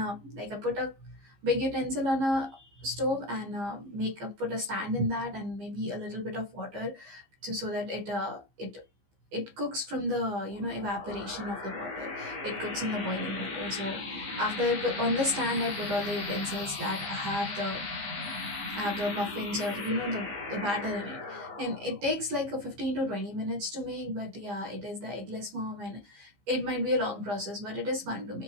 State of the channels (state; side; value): late; left; 15 ms